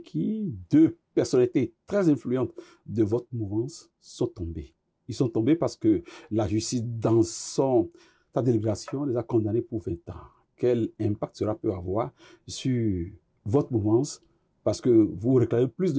deux personnalités très influentes de votre mouvance, sont tombés. Ils sont tombés parce que la justice, dans sa délibération, les a condamnés pour 20 ans. Quel impact cela peut avoir sur votre mouvance? Parce que vous réclamez plus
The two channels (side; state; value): both; identical; correlation 1.00